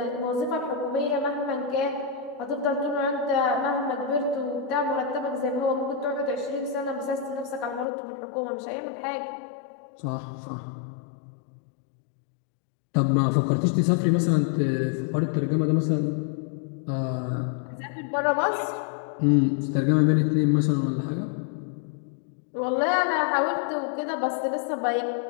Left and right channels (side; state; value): right; drops out; at 7.9 s